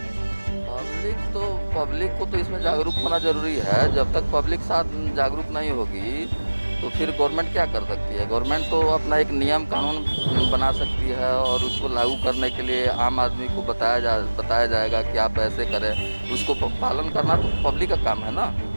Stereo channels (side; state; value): both; inverted; correlation -1.00